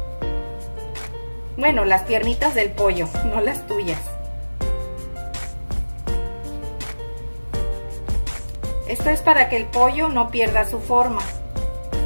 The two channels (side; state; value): both; inverted; correlation -1.00